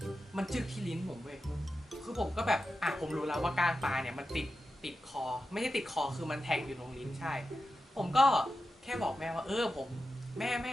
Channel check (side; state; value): both; normal; correlation 0.91